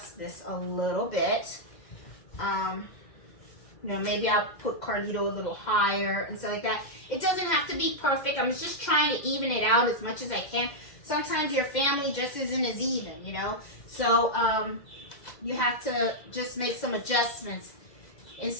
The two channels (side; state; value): right; late; 2.0 ms